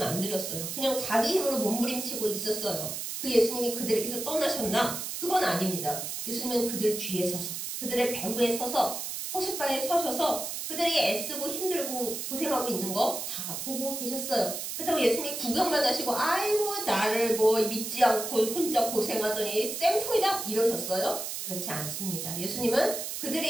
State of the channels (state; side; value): noise; right; hiss, 5 dB below the sound